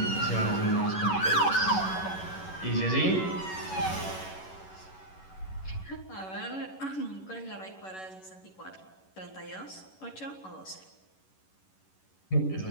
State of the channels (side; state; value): right; late; 11 ms